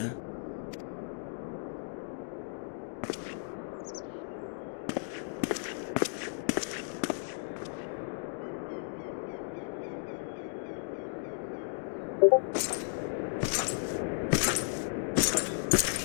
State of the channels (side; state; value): right; silent; digital silence